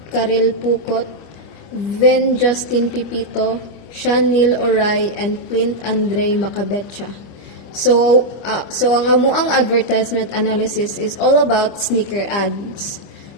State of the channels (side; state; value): right; late; 25 ms